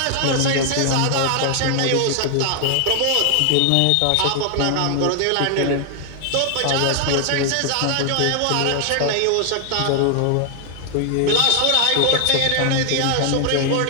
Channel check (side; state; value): both; different; correlation 0.00